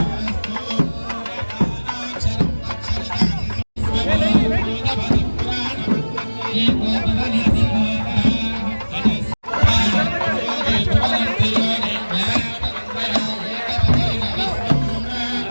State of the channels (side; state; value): both; inverted; correlation -1.00